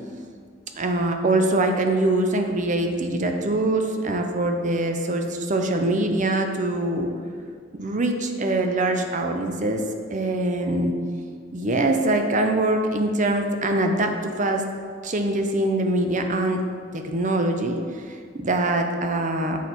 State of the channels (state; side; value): normal; both; correlation 0.34